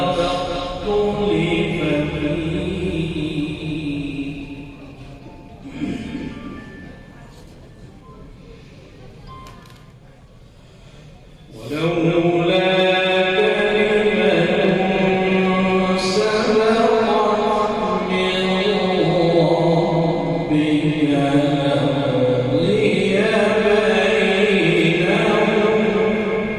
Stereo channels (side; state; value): both; identical; correlation 1.00